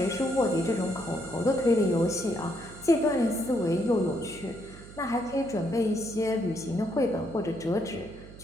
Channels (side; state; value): right; noise; hum, 17 dB below the sound